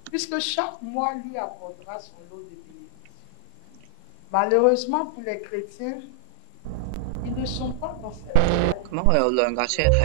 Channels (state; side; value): different; both; correlation 0.00